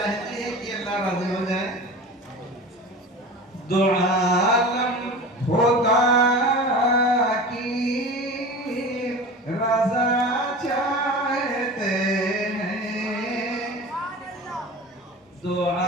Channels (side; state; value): both; normal; correlation 0.34